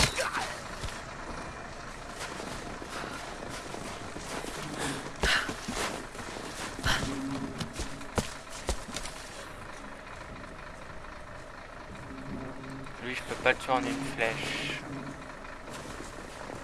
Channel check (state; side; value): identical; both; correlation 1.00